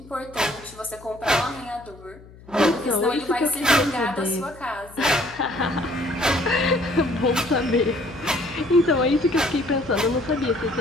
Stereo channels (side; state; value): left; noise; hum, 21 dB below the sound